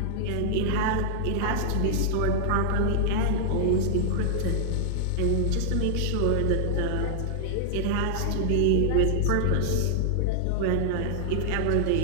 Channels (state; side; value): different; both; correlation -0.01